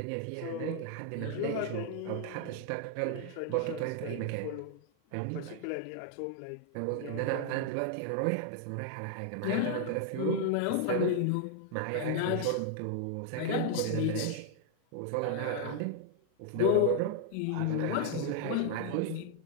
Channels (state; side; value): different; both; correlation 0.00